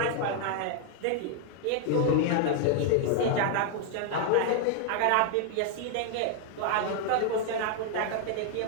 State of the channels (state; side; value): different; both; correlation 0.00